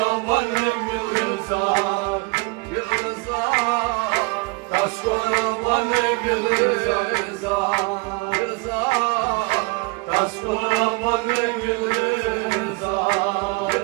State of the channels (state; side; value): quieter; left; 28.4 dB